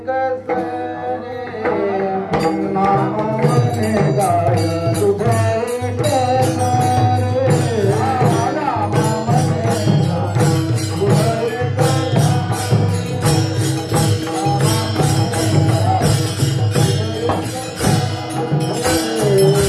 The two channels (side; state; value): both; identical; correlation 1.00